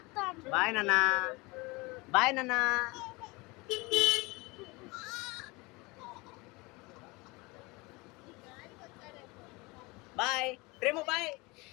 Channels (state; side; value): quieter; right; 24.9 dB